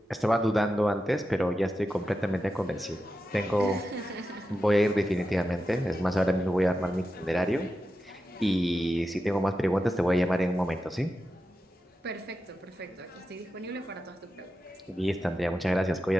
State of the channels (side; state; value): both; normal; correlation 0.90